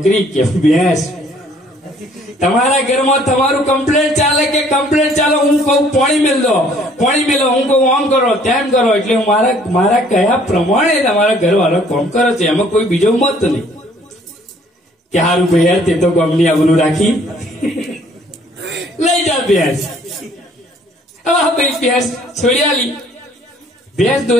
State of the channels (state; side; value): normal; both; correlation 0.59